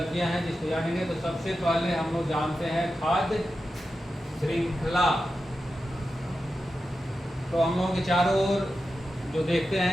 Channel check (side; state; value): both; normal; correlation 0.91